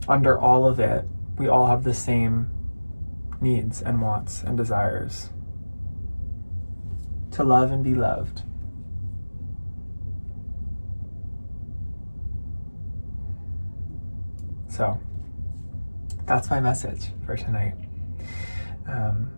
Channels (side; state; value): both; inverted; correlation -1.00